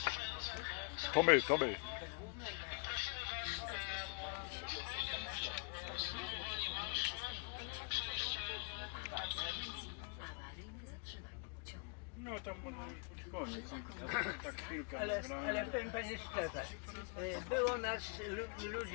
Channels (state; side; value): quieter; right; 36.2 dB